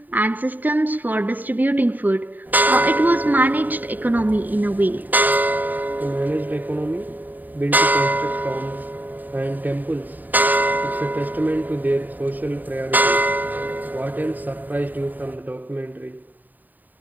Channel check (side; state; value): left; late; 0.086 ms